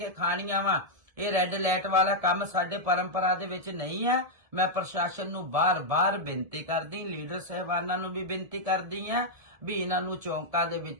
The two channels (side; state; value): left; late; 1.7 ms